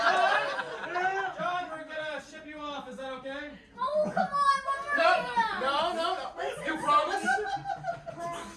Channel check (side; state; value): both; identical; correlation 1.00